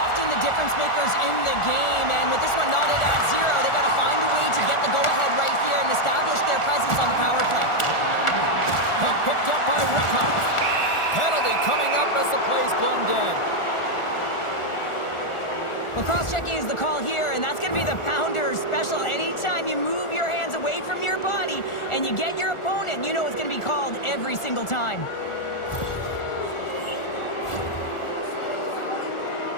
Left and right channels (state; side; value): late; right; 1.4 ms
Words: the difference makers in the game, and with this one knotted at 0, they got to find a way to get the go-ahead right here and establish their presence on the power play. Puck picked up by Rickhoff. Penalty coming up as the play's blown dead. Well, cross-checking is the call here, and that's going to be the Pounder special. Anytime you move your hands away from your body and you get your opponent, you know it's going to be called every single time.